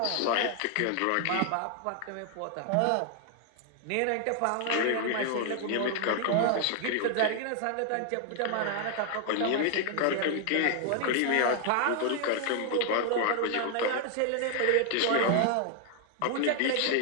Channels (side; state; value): both; different; correlation 0.00